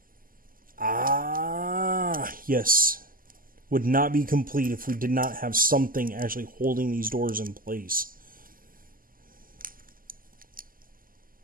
Ah, yes. Would not be complete if we did not have something actually holding these doors in place.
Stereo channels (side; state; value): left; late; 0.41 ms